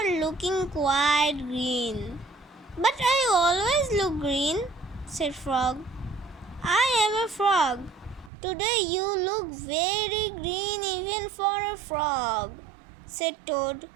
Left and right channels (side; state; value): left; drops out; at 8.3 s